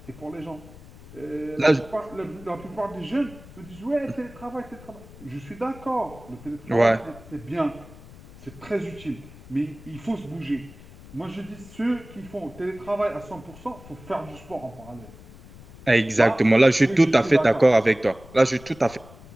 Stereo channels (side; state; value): left; noise; rumble, 19 dB below the sound